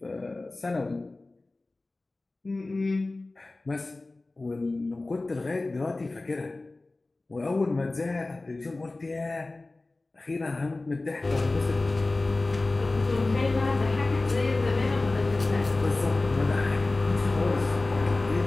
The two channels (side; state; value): right; quieter; 3.1 dB